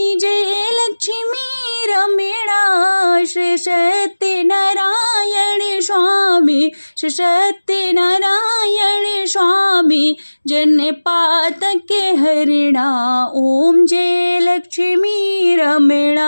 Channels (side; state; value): both; inverted; correlation -1.00